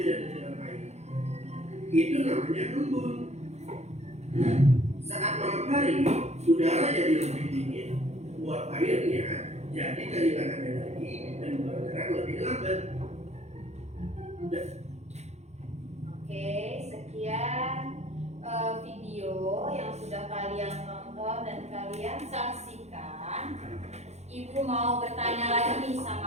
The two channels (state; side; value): late; left; 0.32 ms